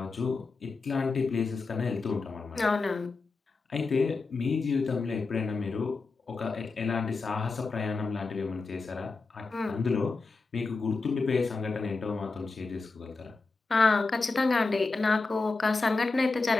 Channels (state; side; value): quieter; right; 3.9 dB